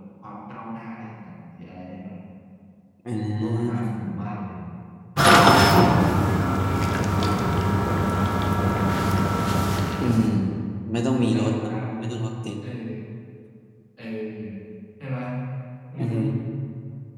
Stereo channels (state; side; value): identical; both; correlation 1.00